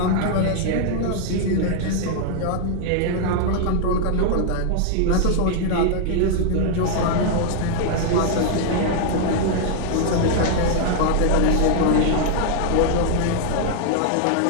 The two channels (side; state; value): both; different; correlation -0.01